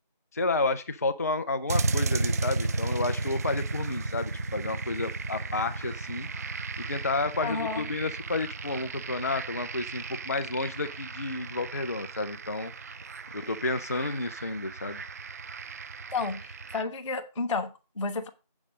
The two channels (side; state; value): both; inverted; correlation -0.49